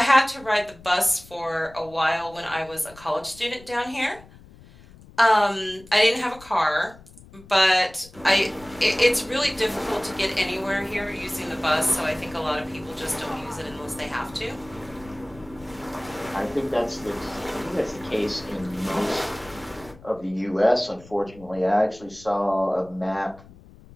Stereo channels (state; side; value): noise; left; rumble, 22 dB below the sound